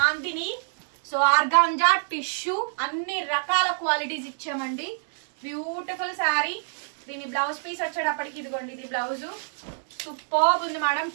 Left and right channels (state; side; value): silent; left; digital silence